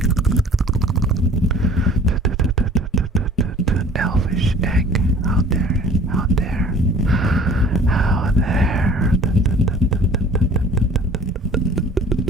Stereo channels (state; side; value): normal; both; correlation 0.49